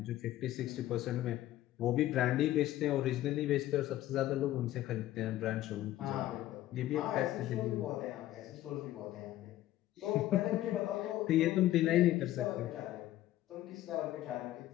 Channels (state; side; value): quieter; right; 14.4 dB